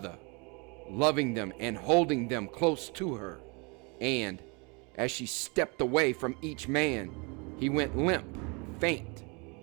loving them and holding them close to her. And as she stepped away from each man, he went limp, faint,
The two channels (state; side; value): quieter; left; 30.8 dB